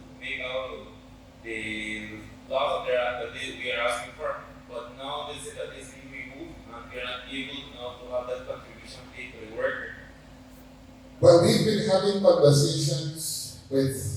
make out the laws that we are asking for, but now they say that it's being removed and we are not able now to have that contribution paid to the worker. Well, we've been having conversations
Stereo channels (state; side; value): identical; both; correlation 1.00